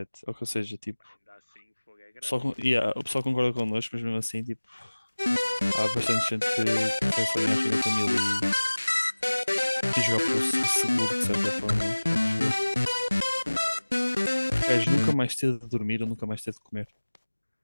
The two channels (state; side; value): inverted; both; correlation -1.00